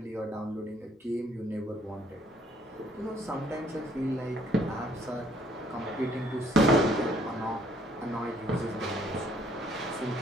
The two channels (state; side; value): normal; both; correlation 0.64